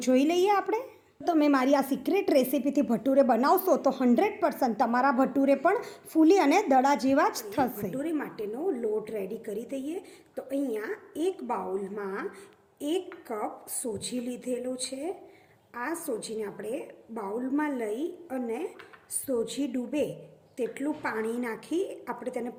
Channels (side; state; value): both; identical; correlation 1.00